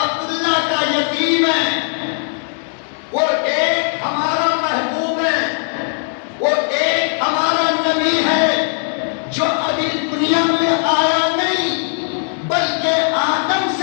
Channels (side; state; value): right; silent; digital silence